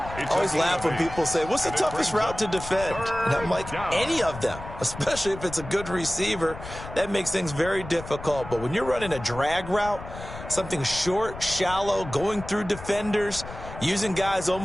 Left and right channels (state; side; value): noise; left; rumble, 12 dB below the sound